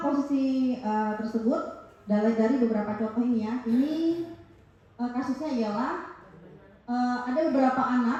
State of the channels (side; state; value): both; identical; correlation 1.00